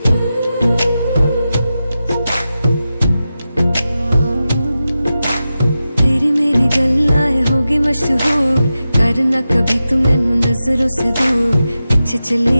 मशहूर करना कभी तू मैनू नजरों से दूर। पीछे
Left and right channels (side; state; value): both; inverted; correlation -0.92